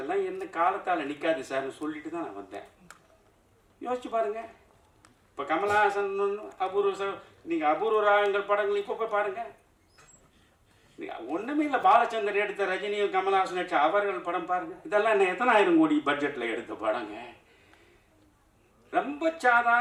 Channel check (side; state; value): both; identical; correlation 1.00